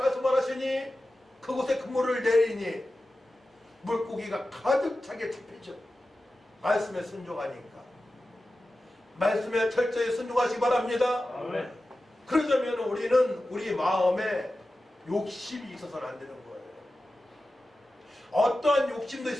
하시니 그곳에 그물을 내리니 물고기가 가득 차게 잡히죠. 말씀에 순종하니까. 말씀에 철저히 순종하시기 바랍니다. 그러자면 우리는 우리 마음에 욕심이 있어서는 안 되는 거예요. 어떠한 욕심도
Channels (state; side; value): normal; both; correlation 0.94